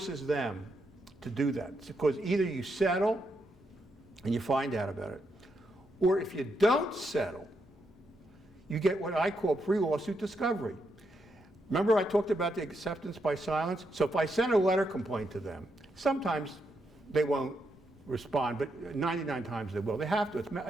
them to do that. It's because either you settle and you find out about it, or if you don't settle, you get what I call pre-lawsuit discovery. Remember I talked about the acceptance by silence? So if I send a letter complaint to them, sometimes they won't respond, but 99 times they will. They have to.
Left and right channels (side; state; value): both; normal; correlation 0.81